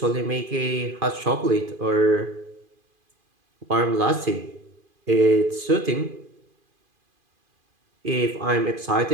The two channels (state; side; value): late; left; 2.5 ms